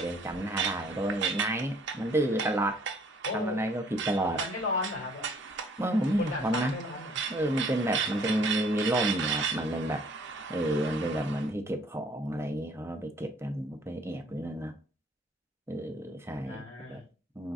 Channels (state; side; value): normal; both; correlation 0.60